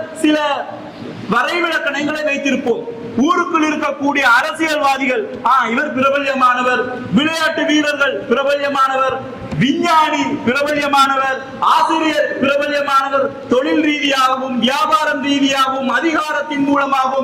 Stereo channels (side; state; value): both; identical; correlation 1.00